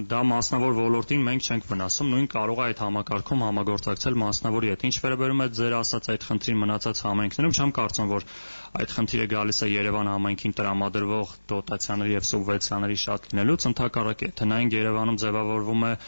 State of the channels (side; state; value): both; inverted; correlation -1.00